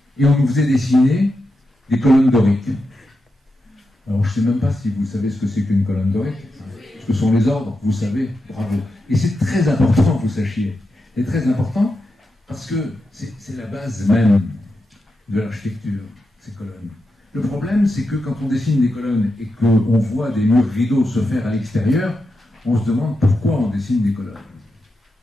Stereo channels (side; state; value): both; normal; correlation 0.88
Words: Et on nous faisait dessiner des colonnes doriques. Alors, je ne sais même pas si vous savez ce que c'est qu'une colonne dorique. Ce que sont les ordres, vous savez, bravo. Et c'est très important que vous sachiez. C'est très important parce que c'est la base même de l'architecture, ces colonnes. Le problème, c'est que quand on dessine des colonnes et qu'on voit des murs rideaux se faire à l'extérieur, on se demande pourquoi on dessine des colonnes.